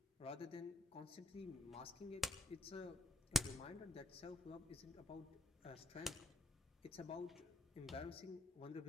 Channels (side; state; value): right; quieter; 3.0 dB